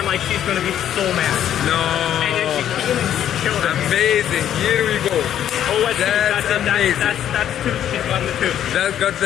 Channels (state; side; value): quieter; right; 10.6 dB